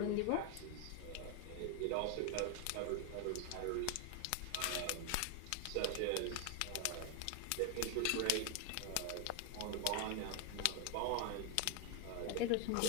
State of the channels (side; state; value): both; different; correlation 0.01